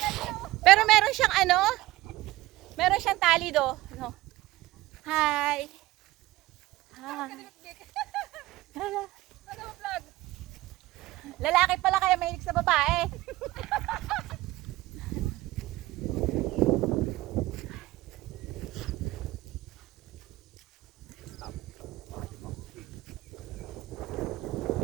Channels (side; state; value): left; quieter; 18.0 dB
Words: Pero meron siyang ano? Meron siyang tali do. No. Hi. Hi. Lalaki pala kaya mahilig sa babae.